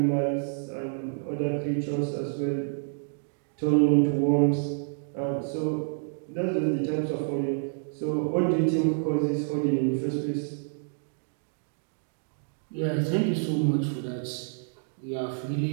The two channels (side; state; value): left; silent; digital silence